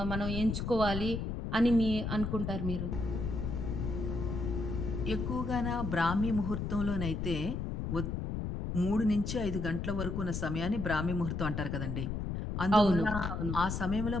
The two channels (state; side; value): noise; left; rumble, 3 dB below the sound